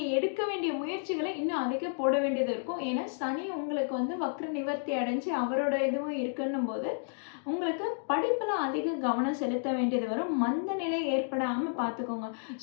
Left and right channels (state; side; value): silent; right; digital silence